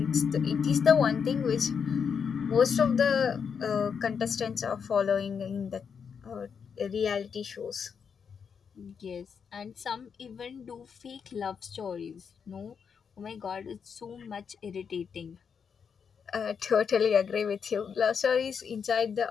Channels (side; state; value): right; quieter; 6.6 dB